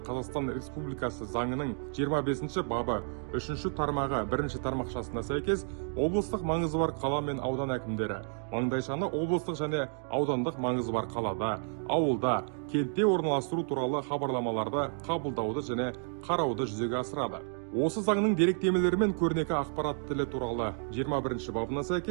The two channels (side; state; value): left; silent; 57 dB below the other